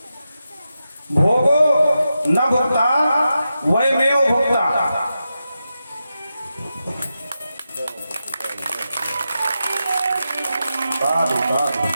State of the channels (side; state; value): both; inverted; correlation -0.89